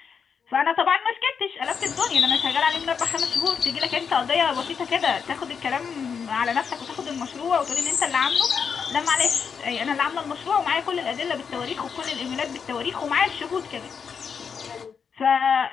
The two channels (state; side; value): quieter; right; 6.4 dB